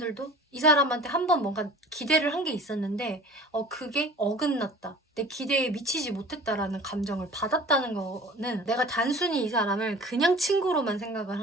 이 사람한테 한 번 뭔가 기대를 한 게 있었는데 그게 어긋났다. 내 기대에 미치지 못했다라는 감정을 받았다는 거는 내가 단순히 이 사람을 그냥 친구로만 생각을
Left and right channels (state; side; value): normal; both; correlation 0.43